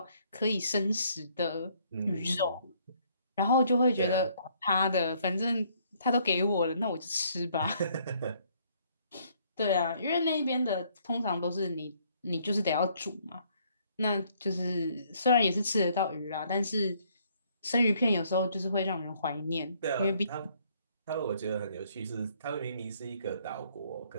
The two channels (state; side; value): inverted; both; correlation -0.65